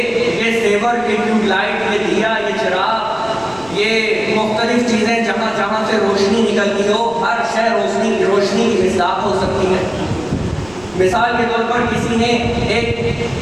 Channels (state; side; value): noise; right; rumble, 23 dB below the sound